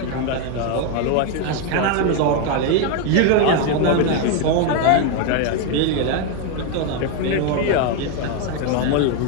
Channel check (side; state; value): both; different; correlation 0.01